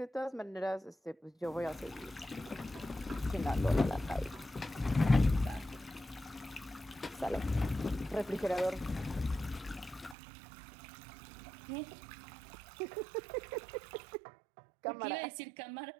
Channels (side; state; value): left; drops out; at 10.2 s